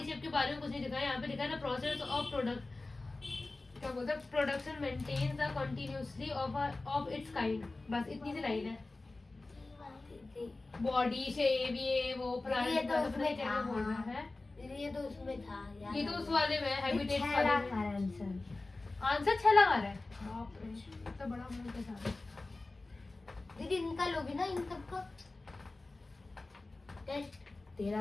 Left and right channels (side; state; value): right; quieter; 3.2 dB